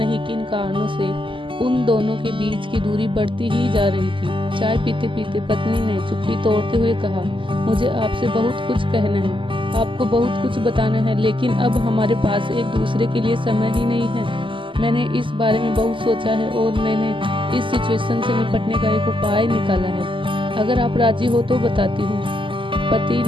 किन कारणों से उन दोनों के बीच की दूरी बढ़ती ही जा रही थी। चाय पीते पीते पत्नी ने चुप्पी तोड़ते हुए कहा, मुझे आपसे बहुत कुछ कहना है, आपको बहुत कुछ बताना है, लेकिन अब हमारे पास एक दूसरे के लिए समय ही नहीं है। मैंने इस बारे में बहुत सोचा है और मैंने इस सिचुएशन से निपटने का एक उपाय निकाला है। अगर आप राजी हो तो बताती हूँ। पति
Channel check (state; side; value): late; left; 0.25 ms